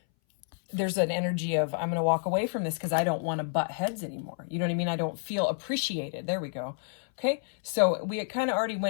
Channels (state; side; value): silent; right; 58 dB below the other